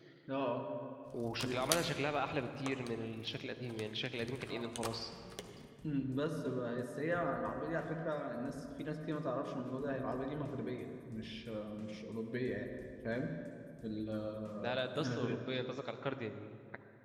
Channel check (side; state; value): both; identical; correlation 1.00